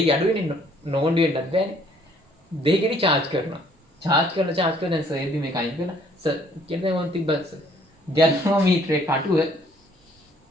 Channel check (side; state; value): both; normal; correlation 0.62